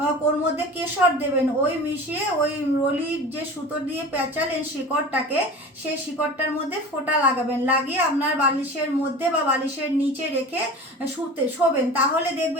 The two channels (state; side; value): normal; both; correlation 0.35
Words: ওর মধ্যে কেশর দেবেন। ওই মিশিয়ে ওই রলির যে সুতো দিয়ে পেঁচালেন শিকড়টাকে, সেই শিকড়টার মধ্যে ফোঁটা লাগাবেন, লাগিয়ে আপনার বালিশের মধ্যে বা বালিশের নিচে রেখে শোবেন। তাহলে